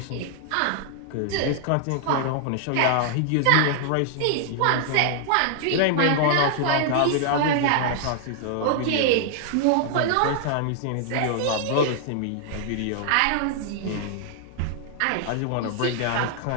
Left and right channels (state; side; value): different; both; correlation -0.01